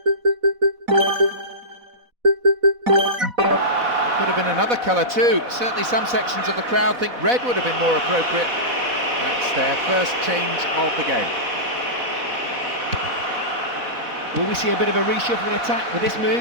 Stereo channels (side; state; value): left; late; 4.1 ms